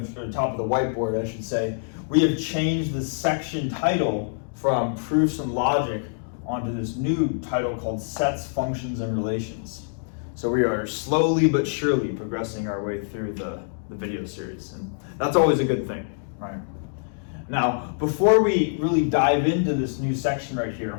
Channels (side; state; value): right; silent; digital silence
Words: or top of the whiteboard, I should say, we have changed the section title from proofs and logic onto this new title called sets, functions, and relations. So we are slowly but surely progressing our way through the video series, and that's always a good thing, right? Now, before we really dive into this new section right